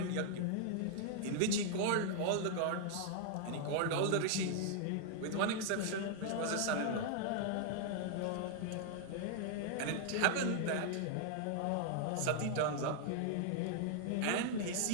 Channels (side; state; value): both; different; correlation 0.00